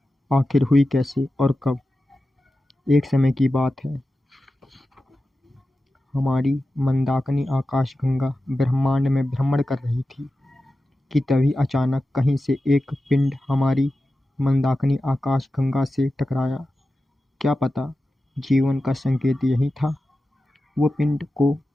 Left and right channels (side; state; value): both; normal; correlation 0.93